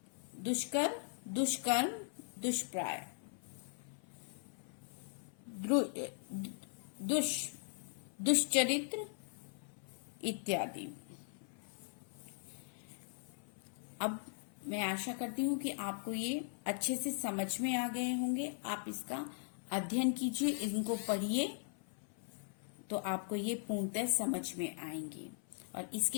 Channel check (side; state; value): right; silent; 51 dB below the other